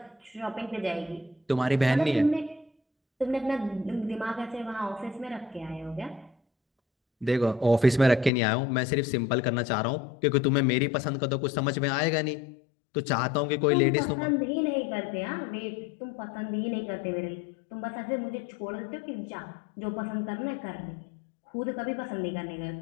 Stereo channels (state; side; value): drops out; right; at 8.3 s